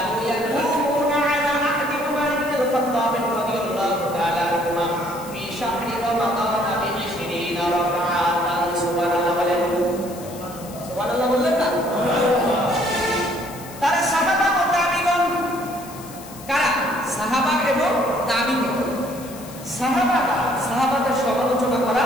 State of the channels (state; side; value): noise; left; hiss, 17 dB below the sound